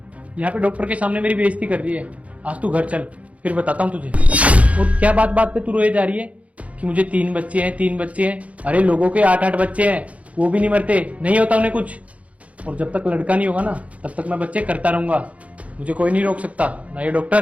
यहाँ पे डॉक्टर के सामने मेरी बेइज्जती कर रही है। आज तू घर चल, फिर बताता हूँ तुझे। और क्या बात बात पे तू रोए जा रही है कि मुझे 3 बच्चे हैं, 3 बच्चे हैं। अरे लोगों के 8-8 बच्चे हैं, वो भी नहीं मरते, नहीं होता उन्हें कुछ। और जब तक लड़का नहीं होगा ना तब तक मैं बच्चे करता रहूंगा। मुझे कोई नहीं रोक सकता, ना ये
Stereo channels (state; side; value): late; left; 0.066 ms